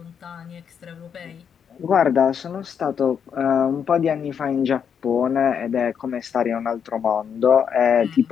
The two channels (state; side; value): quieter; right; 7.5 dB